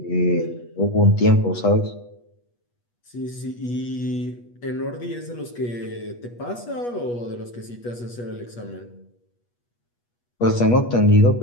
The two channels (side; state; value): right; late; 8.3 ms